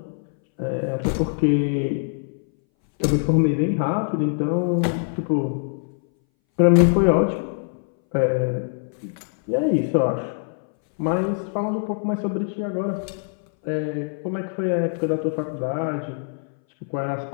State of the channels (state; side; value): silent; right; 61 dB below the other